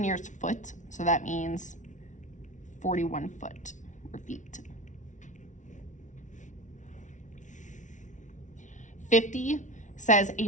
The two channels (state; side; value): late; right; 0.36 ms